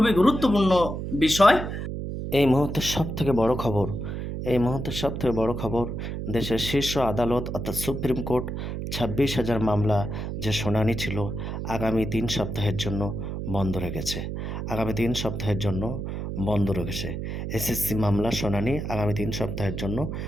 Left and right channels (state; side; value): noise; right; hum, 5 dB below the sound